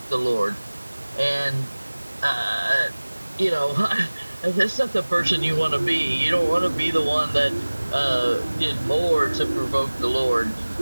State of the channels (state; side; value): inverted; both; correlation -1.00